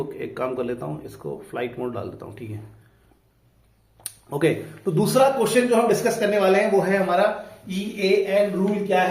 एक काम कर लेता हूँ, इसको फ्लाइट मोड डाल देता हूँ, ठीक है। ओके, तो दूसरा क्वेश्चन जो हम डिस्कस करने वाले हैं वो है हमारा EAN रूल क्या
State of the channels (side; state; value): both; identical; correlation 1.00